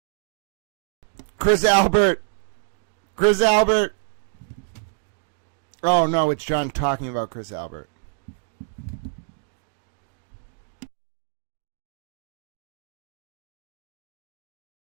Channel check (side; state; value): left; silent; digital silence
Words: Chris Albert! Chris Albert! Oh no, it's John talking about Chris Albert.